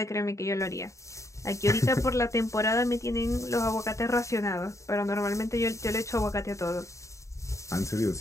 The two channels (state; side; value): late; right; 0.15 ms